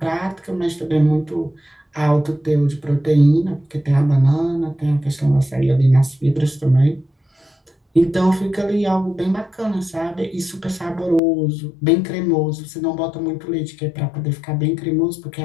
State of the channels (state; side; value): drops out; right; at 11.2 s